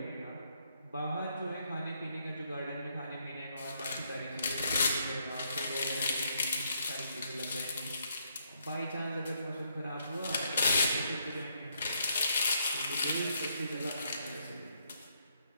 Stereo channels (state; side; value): inverted; both; correlation -0.74